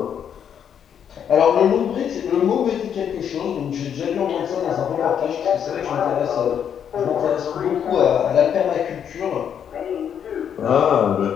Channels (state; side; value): quieter; right; 8.5 dB